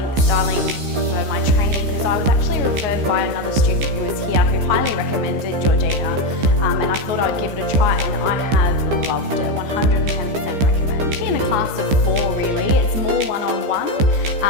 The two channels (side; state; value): left; late; 15 ms